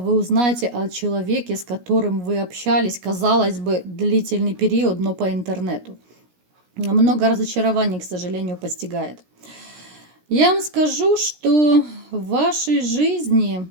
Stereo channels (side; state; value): left; late; 17 ms